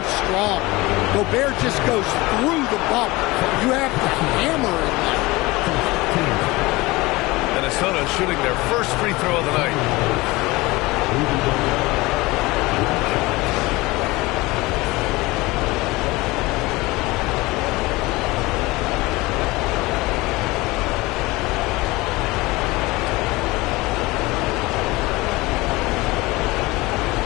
strong. Gobert just goes through the bump. You have to hammer it. Minnesota shooting their first free throw of the night.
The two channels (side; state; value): right; quieter; 21.5 dB